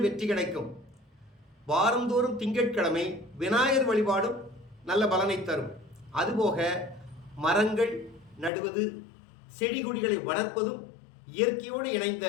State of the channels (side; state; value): right; drops out; at 8.5 s